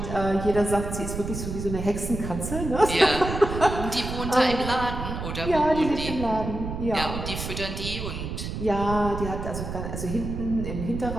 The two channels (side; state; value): right; noise; rumble, 6 dB below the sound